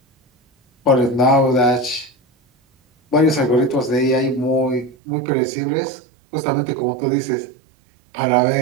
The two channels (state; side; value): drops out; left; at 5.0 s